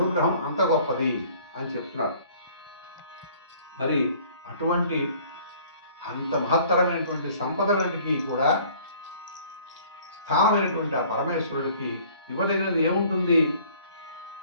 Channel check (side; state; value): both; inverted; correlation -0.54